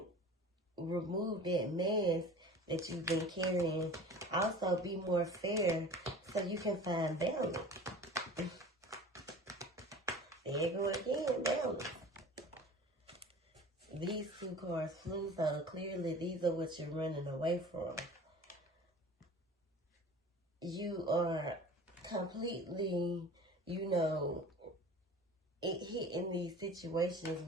remove that mask that you've been carrying. Also, be more fair so you can find balance. There you go again, balance. These two cards flew, so clearly these are what you're running away from. You are completely, hitting these situations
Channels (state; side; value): normal; both; correlation 0.41